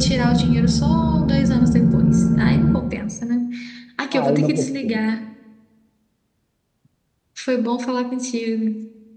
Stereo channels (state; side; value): identical; both; correlation 1.00